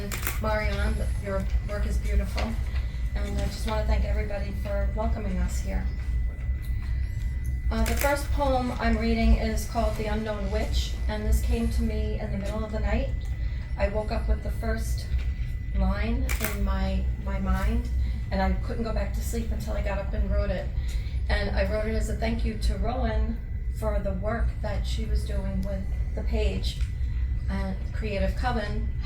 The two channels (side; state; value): both; identical; correlation 1.00